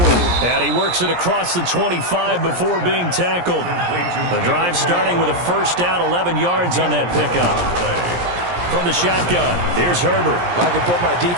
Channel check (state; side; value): late; left; 17 ms